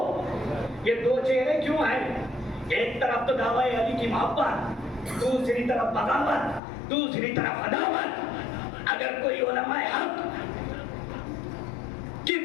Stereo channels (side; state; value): right; drops out; at 6.6 s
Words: یہ دو چہرے کیوں ہیں؟ ایک طرف تو دعوی علی کی محبت، دوسری طرف بغاوت، دوسری طرف عداوت۔ اگر کوئی علماء حق کی